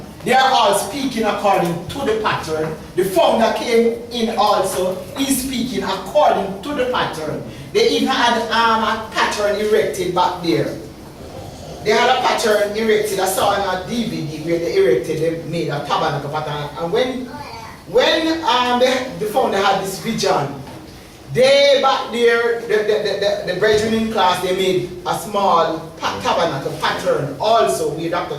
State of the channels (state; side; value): identical; both; correlation 1.00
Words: they are all speaking according to the pattern. The founder came in also, he's speaking according to the pattern. They even had a pattern erected back there. They had a pattern erected. I saw on a DVD where they erected, they made a tabernacle pattern. And when the founder had this vision, they back there, the brethren in class, they made a small tabernacle pattern also where